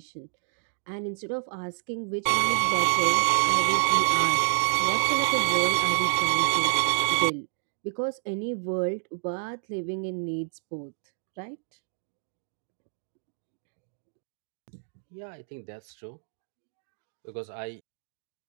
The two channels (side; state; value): left; silent; digital silence